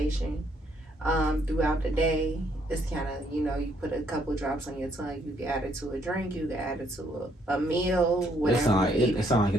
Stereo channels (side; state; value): both; normal; correlation 0.69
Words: throughout the day. It's kind of, you know, you put a couple drops on your tongue, you can add it to a drink, you can add it to a meal, whatever. It sounds like